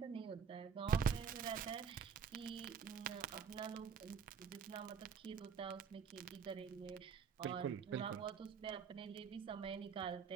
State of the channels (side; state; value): left; quieter; 6.7 dB